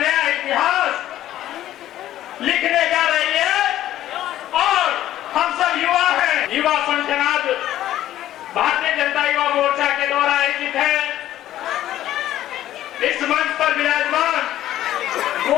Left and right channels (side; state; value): right; quieter; 13.1 dB